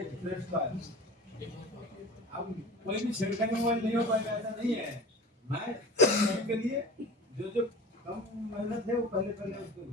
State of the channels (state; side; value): normal; both; correlation 0.36